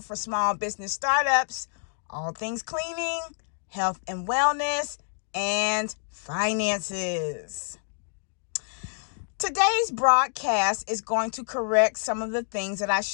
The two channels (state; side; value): silent; right; digital silence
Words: for small business startups, all things cleaning, health and wellness, and finances. Today's broadcast is going to correct some of the things that I